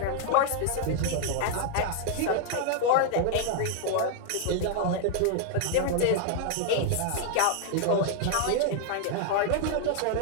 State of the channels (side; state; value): both; different; correlation 0.00